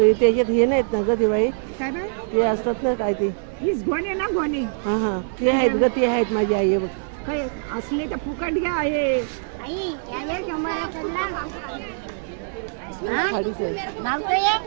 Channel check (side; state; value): left; silent; digital silence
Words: त्याच्यात हे नाहीत ना ग दिवाळी, ते असतात ना काय ते गोणे ना गोणे ते आहेत ग, ते आहेत माझी आई बघ. काय असले तर फुकट घ्या आहे.